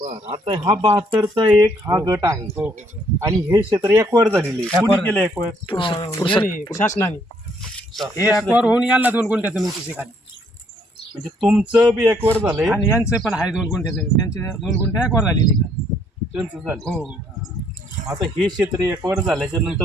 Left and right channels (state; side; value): normal; both; correlation 0.67